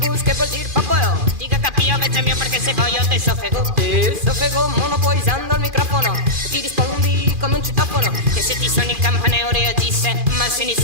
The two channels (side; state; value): left; late; 2.4 ms